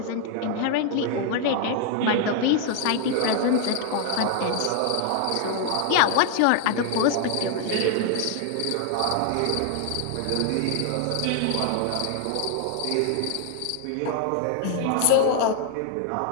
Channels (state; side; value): different; both; correlation 0.00